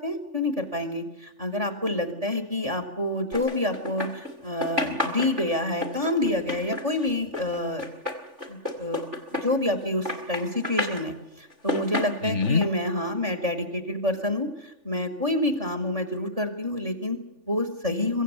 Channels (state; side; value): late; left; 3.5 ms